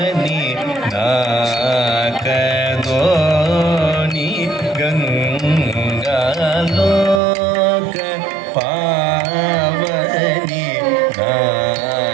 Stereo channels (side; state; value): left; drops out; at 7.2 s